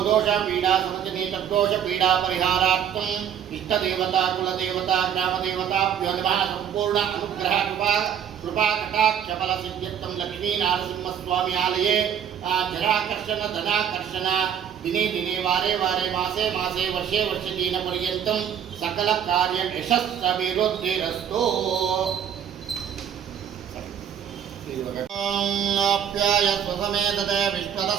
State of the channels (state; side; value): quieter; left; 8.9 dB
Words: दोषपीडा समजने तद्दोषपीडापरिहारार्थम् इष्टदेवता कुलदेवता ग्रामदेवताभ्यो नमः. संपूर्ण अनुग्रह कृपा कटाक्ष फल सिद्ध्यर्थम लक्ष्मी नारसिंह स्वामी आलये जराकर्षण धनाकर्षण दिने दिने वारे वारे मासे मासे वर्षे वर्षे दिन पर्यंतम सकल कार्य यशस्सभिवृद्धिरस्तु. आप्याय स्वसमेतते